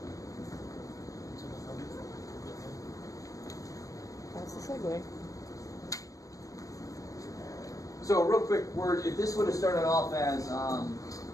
That's the segue. So a real quick word, if this would have started off as,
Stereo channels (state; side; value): late; right; 0.16 ms